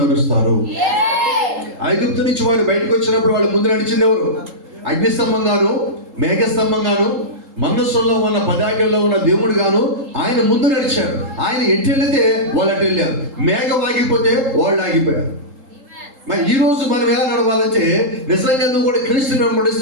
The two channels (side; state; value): left; late; 3.8 ms